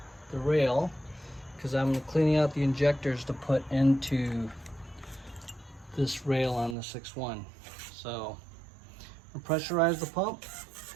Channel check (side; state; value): left; drops out; at 6.8 s